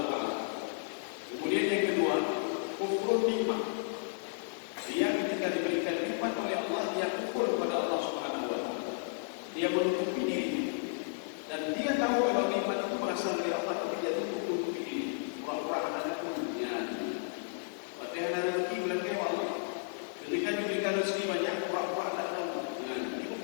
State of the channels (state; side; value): silent; right; digital silence